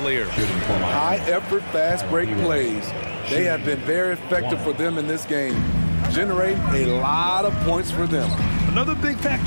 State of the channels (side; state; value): both; inverted; correlation -1.00